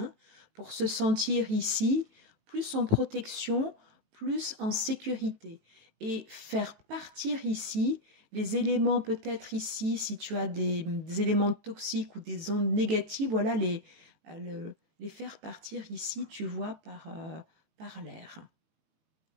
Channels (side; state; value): left; late; 19 ms